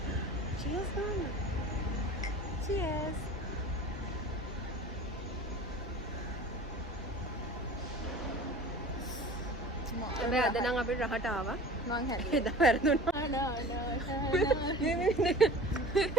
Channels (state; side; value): normal; both; correlation 0.41